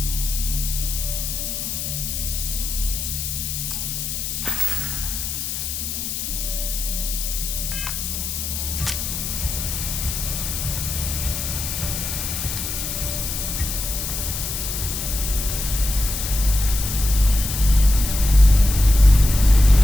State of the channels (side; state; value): left; noise; hiss, 4 dB below the sound